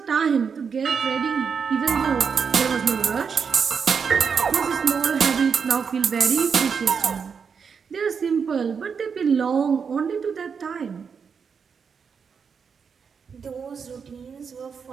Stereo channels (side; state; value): left; quieter; 6.2 dB